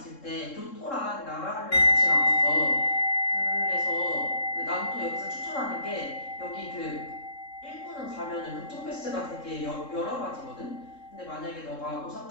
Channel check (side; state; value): right; late; 3.7 ms